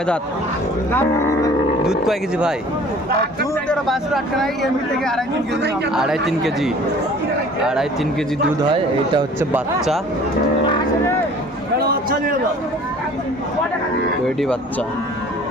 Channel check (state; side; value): normal; both; correlation 0.49